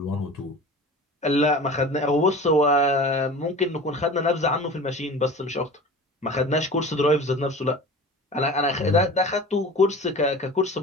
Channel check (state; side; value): normal; both; correlation 0.37